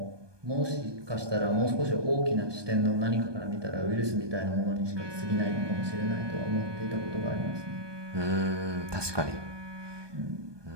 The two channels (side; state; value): left; late; 1.2 ms